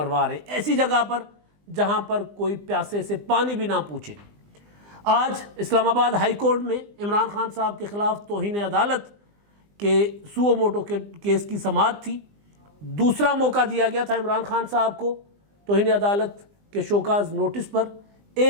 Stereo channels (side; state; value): left; late; 20 ms